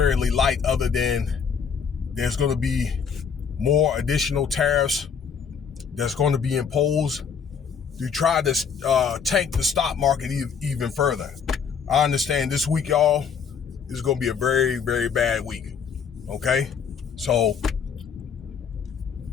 light, other than there's going to be more additional tariffs that's going to be imposed to try to tank the stock market even further. I understand this week, y'all, is going to be a very, very bad week. Okay? So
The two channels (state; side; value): quieter; right; 6.6 dB